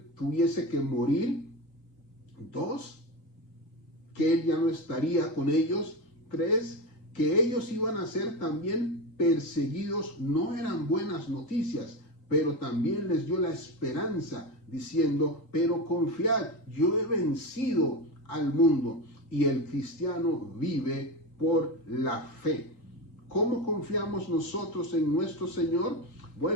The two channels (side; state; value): right; late; 3.8 ms